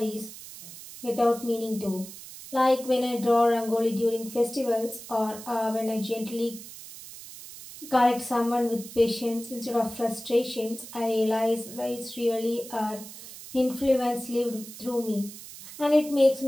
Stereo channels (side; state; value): right; noise; hiss, 14 dB below the sound